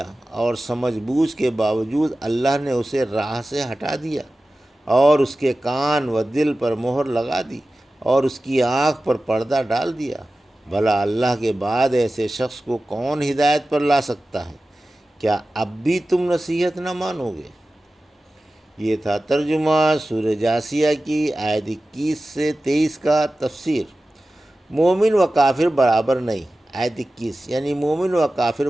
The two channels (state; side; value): normal; both; correlation 0.95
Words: اور سمجھ بوجھ کے باوجود اللہ نے اسے راہ سے ہٹا دیا اور اس کے کان و دل پر مہر لگا دی اور اس کی آنکھ پر پردہ ڈال دیا؟ بھلا اللہ کے بعد ایسے شخص کو کون ہدایت پر لا سکتا ہے؟ کیا اب بھی تم نصیحت نہ مانو گے؟ یہ تھا ترجمہ سورہ جاثیہ کی آیت 21 سے 23 کا تفسیر۔ مومن و کافر برابر نہیں۔ آیت 21 یعنی مومن و کافر